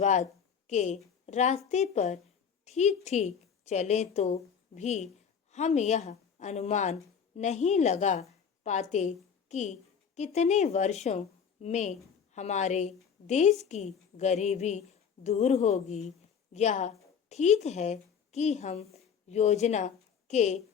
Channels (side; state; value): right; quieter; 7.1 dB